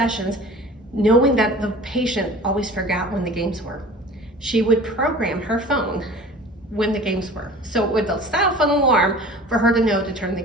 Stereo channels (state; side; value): normal; both; correlation 0.42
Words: knowing that the patient always forgot when the games were, she would program her phone when the games were. So it would set off an alarm for her to know to turn the